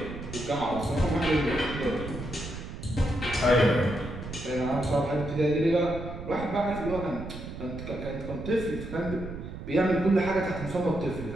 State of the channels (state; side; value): noise; right; rumble, 9 dB below the sound